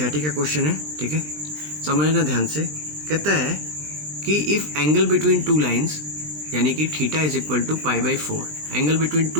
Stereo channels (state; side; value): late; left; 20 ms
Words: का क्वेश्चन है, ठीक है, समझना ध्यान से। कहता है कि if angle between two lines, यानी कि theta is equal to π/4, angle between